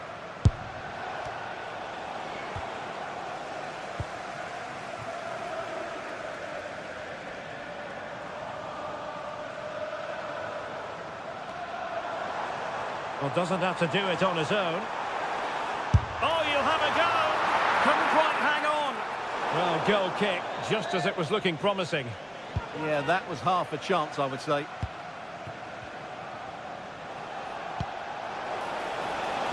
Well, doesn't have to do it on his own. Oh, you'll have a go. Couldn't quite hang on. Well, goal kick, just as it was looking promising. Yeah, that was half a chance, I would say.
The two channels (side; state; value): both; identical; correlation 1.00